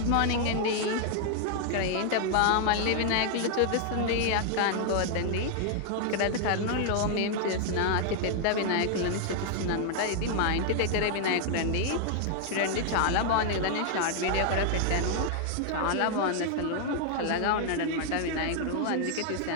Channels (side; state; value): both; different; correlation 0.00